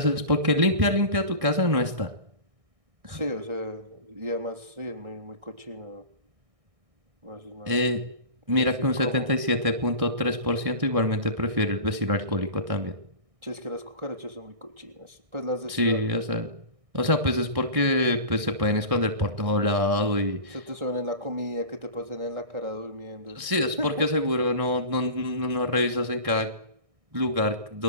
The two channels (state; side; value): late; left; 1.6 ms